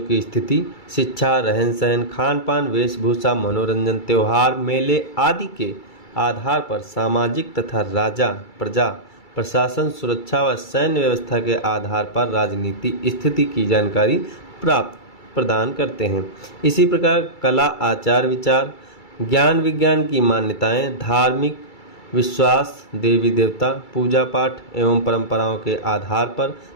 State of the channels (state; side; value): late; right; 2.3 ms